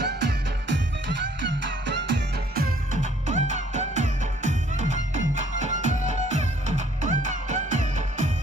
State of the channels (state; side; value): normal; both; correlation 0.61